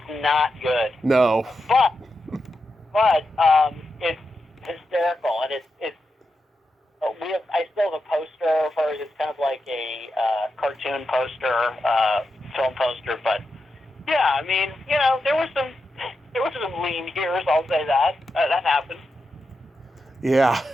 not good. No. But it's hysterical, and it's. I still have a poster of hers. It's kind of like a cartoon poster, film poster. But yeah, there were some lean years. I'll say that that happened. Yeah.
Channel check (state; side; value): normal; both; correlation 0.87